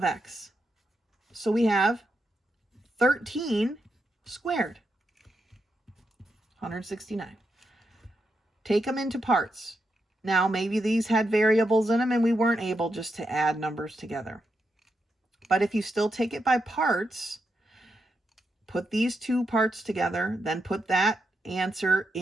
x. So we have 13 squared, 169. Take them into parts. Now maybe these had variables in them and we weren't able just to add numbers together. But if you still take it by parts, put these two parts together, then put that answer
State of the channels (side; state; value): both; normal; correlation 0.84